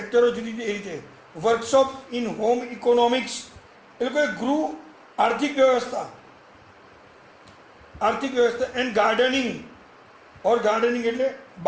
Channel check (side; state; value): both; identical; correlation 1.00